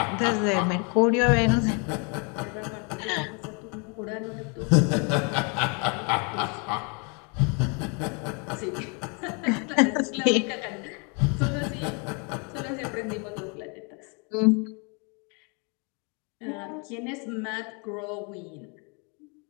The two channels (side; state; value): right; quieter; 34.4 dB